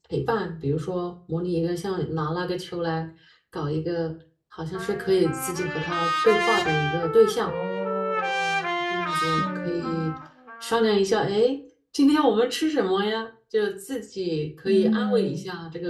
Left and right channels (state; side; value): identical; both; correlation 1.00